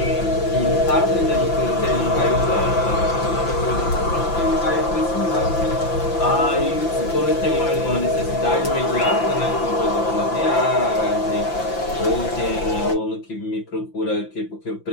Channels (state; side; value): late; right; 5.9 ms